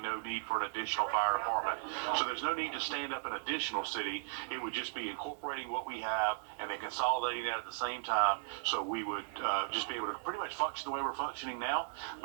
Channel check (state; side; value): silent; left; 53 dB below the other